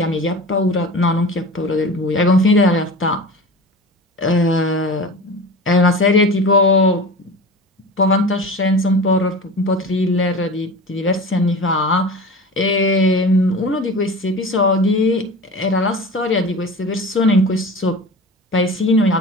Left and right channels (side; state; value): both; normal; correlation 0.34